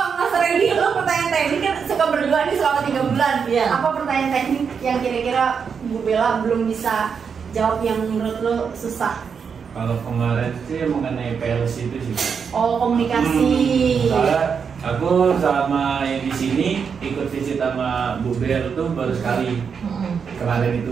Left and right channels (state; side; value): quieter; left; 6.4 dB